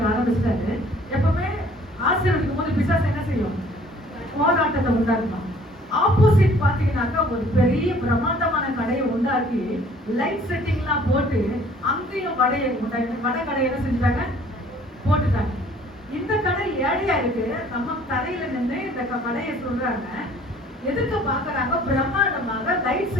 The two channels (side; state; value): both; normal; correlation 0.55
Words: ஆரம்பிச்சிட்டாரு. எப்பவுமே ஆசீர்வதிக்கும் போது பிசாசு என்ன செய்யும்? போராட்டத்தை உண்டாக்கணும். ஆப்போசிட் பாத்தீங்கன்னாக்கா ஒரு பெரிய பிரம்மாண்டமான கடையை உண்டாக்கி லைட் செட்டிங்லாம் போட்டு அங்கேயும் வடை கடையை என்ன செஞ்சுட்டாங்க, போட்டுட்டாங்க. இந்த கடை ஏழையா இருக்கு, நம்ம தரையில நின்று இந்த கடையை சொல்றாங்க, எதுக்கு பாக்குறாங்க, பிரம்மாண்டமாக லைட்